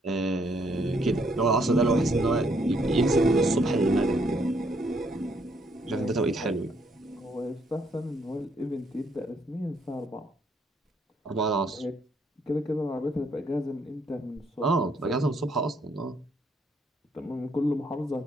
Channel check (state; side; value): normal; both; correlation 0.70